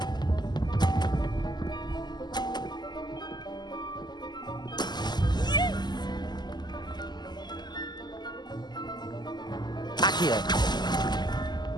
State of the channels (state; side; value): late; right; 0.21 ms